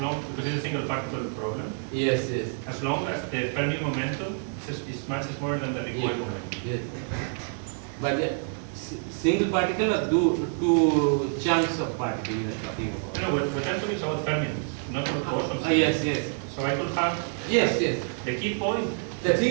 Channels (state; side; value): silent; left; 60 dB below the other